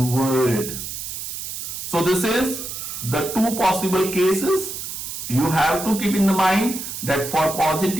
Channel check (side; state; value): right; noise; hiss, 7 dB below the sound